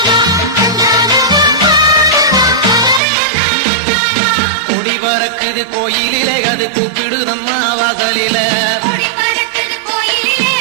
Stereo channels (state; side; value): drops out; left; at 3.0 s